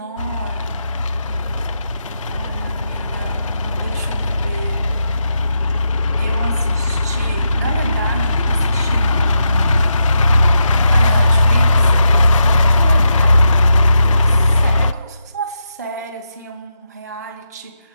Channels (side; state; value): both; inverted; correlation -0.85